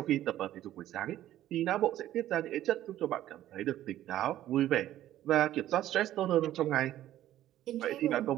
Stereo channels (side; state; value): left; quieter; 13.2 dB